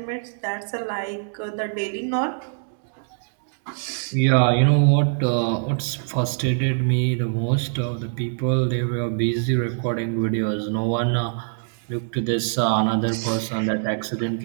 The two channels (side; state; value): left; silent; digital silence